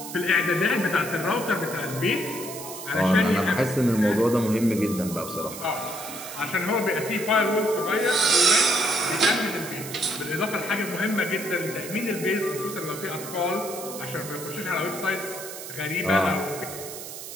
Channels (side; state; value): right; noise; hiss, 10 dB below the sound